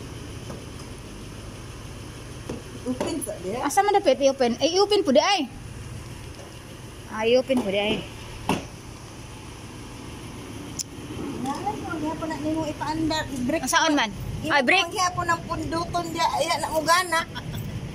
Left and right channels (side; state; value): both; identical; correlation 1.00